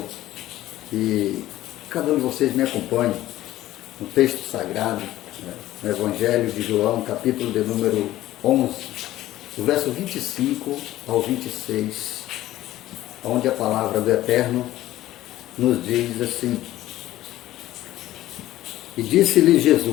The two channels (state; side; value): quieter; right; 14.9 dB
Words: que cada um de vocês me acompanhe no texto sagrado, no Evangelho de João, capítulo de número 11, do verso 25 ao 26, onde a palavra do Eterno nos diz assim: E disse-lhe